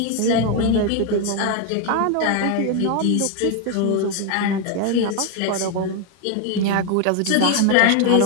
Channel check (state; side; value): different; both; correlation 0.01